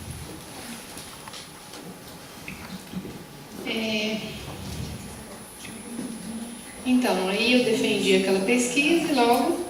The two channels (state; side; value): identical; both; correlation 1.00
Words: Então, aí eu defendi aquela pesquisa e logo